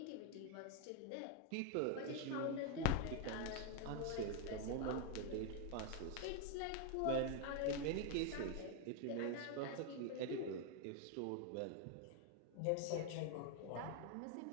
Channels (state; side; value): different; both; correlation 0.01